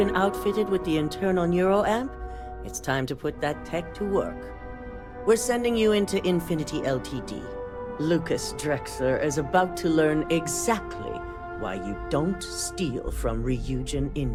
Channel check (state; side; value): identical; both; correlation 1.00